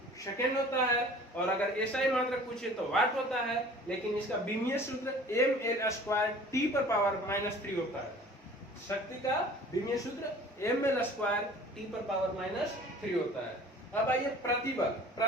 सेकंड होता है और अगर SI मात्रक पूछे तो वाट होता है। लेकिन इसका बीमीय सूत्र mL स्क्वायर T पर पावर -3 होता है। शक्ति का विमीय सूत्र ml स्क्वायर टी पर पावर माइनस 3 होता है। अब आइए प्रतिबल।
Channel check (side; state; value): both; normal; correlation 0.47